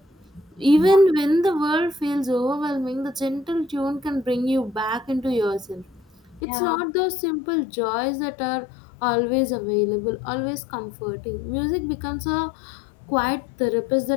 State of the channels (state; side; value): drops out; right; at 6.4 s